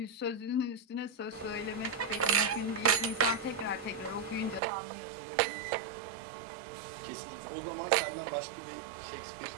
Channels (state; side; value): drops out; left; at 4.6 s